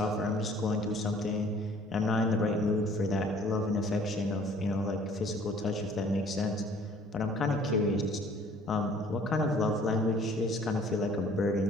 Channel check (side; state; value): both; normal; correlation 0.54